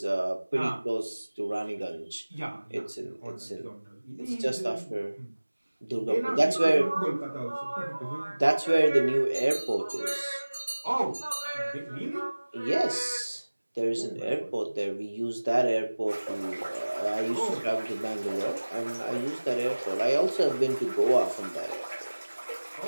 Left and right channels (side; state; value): both; inverted; correlation -1.00